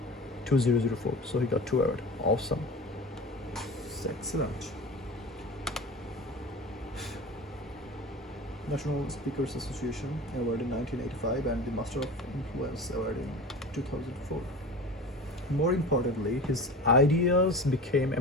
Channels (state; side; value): normal; both; correlation 0.34